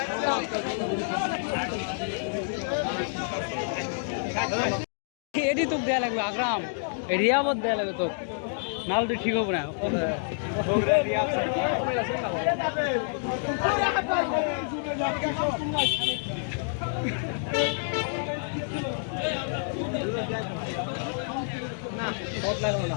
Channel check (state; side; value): silent; right; digital silence